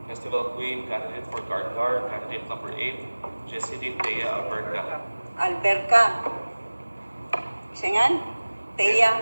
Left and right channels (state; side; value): inverted; both; correlation -1.00